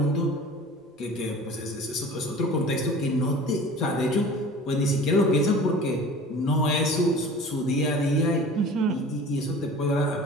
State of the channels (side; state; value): both; normal; correlation 0.41